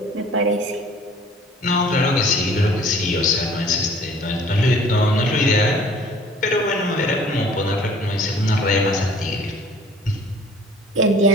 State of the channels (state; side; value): normal; both; correlation 0.51